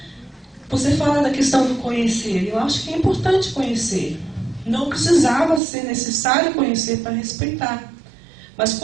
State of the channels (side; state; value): left; drops out; at 5.6 s